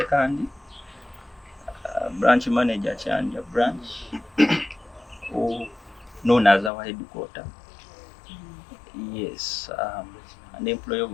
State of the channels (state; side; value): drops out; right; at 6.7 s